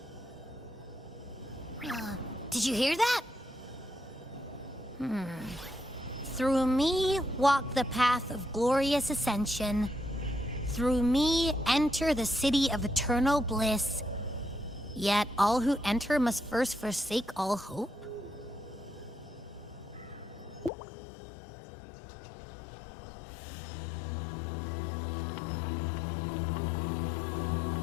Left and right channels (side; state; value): right; drops out; at 20.7 s